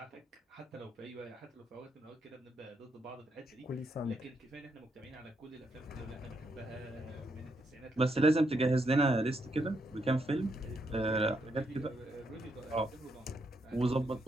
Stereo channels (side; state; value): both; normal; correlation 0.78